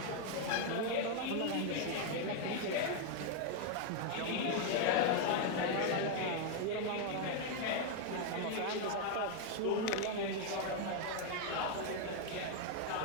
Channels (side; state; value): both; different; correlation 0.00